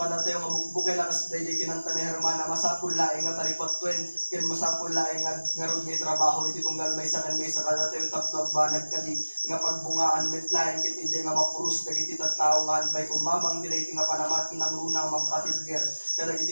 tayo nga bukbukay lakas daydi kinanta ni Hermana masapul laeng nga taripatwen ken masapul laeng nga ngarod nga trabaho iti tunggal may saken may sakada tayo tapno agbanag kadi nga pagbungaan met laeng ket ije nga mapuros dagiti tattao nga anpay kumamang dili nga panamati ng runang mampatibger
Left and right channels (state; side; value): inverted; both; correlation -1.00